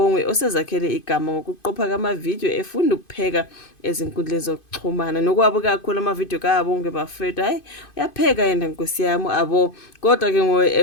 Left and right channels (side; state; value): right; late; 2.5 ms